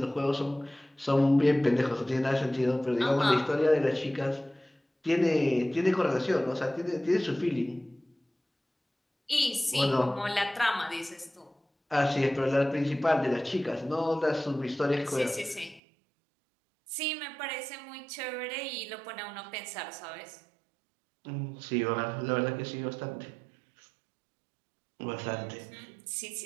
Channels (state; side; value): drops out; left; at 15.8 s